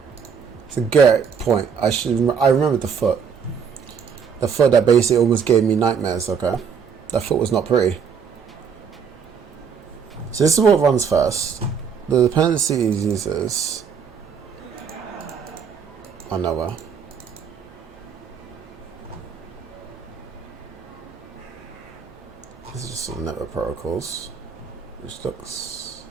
It's a great point. I remember the foot. The foot that basically almost gave me nightmares, okay? That foot was not pretty. So this is what runs first. The dependencies uses are nowhere. This is just some network protocols, which looks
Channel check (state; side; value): quieter; left; 6.6 dB